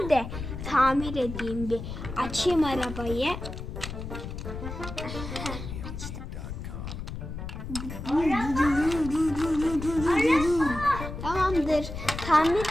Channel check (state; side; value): noise; left; rumble, 8 dB below the sound